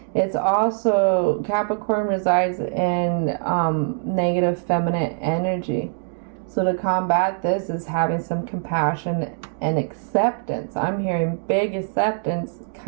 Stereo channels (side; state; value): left; silent; digital silence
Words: It's also, Capricorn resides in negative feminine energy. So to combat this is having some compassion and acceptance. I'm hearing big acceptance,